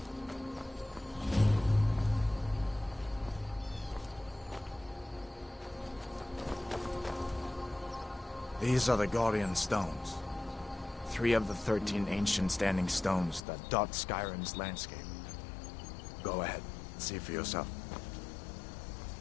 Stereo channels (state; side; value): drops out; right; at 13.5 s